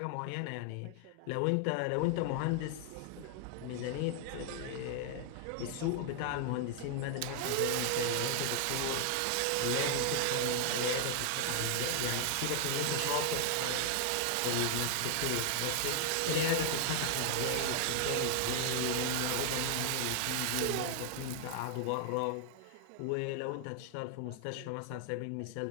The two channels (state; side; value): different; both; correlation 0.00